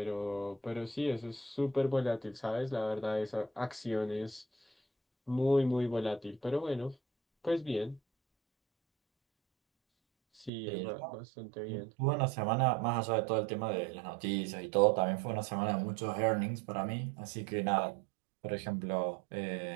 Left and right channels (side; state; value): left; drops out; at 10.5 s